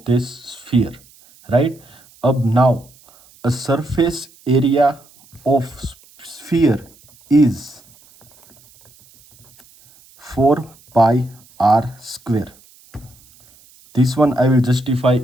this sphere, right. अब now a surface area of sphere is 4 pi r square. This one I will justify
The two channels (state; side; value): noise; right; hiss, 28 dB below the sound